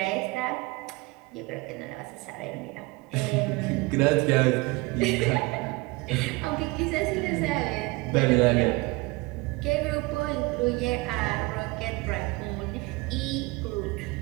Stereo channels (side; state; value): left; quieter; 24.1 dB